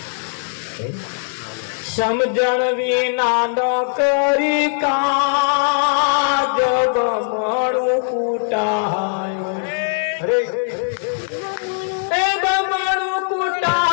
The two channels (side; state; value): right; silent; digital silence